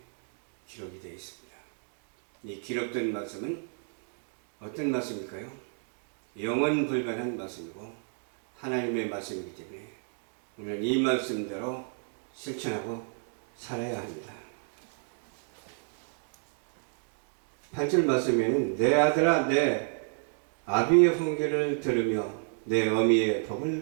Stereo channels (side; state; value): left; silent; 57 dB below the other